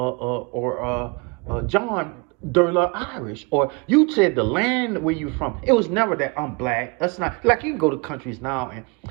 John de la Irish, or you said the land where you from. It was never that I'm black. That's not like, you can go to countries now and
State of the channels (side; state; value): left; quieter; 29.6 dB